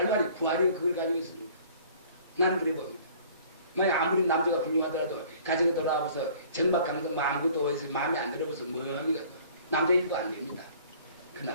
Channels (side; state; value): both; inverted; correlation -0.52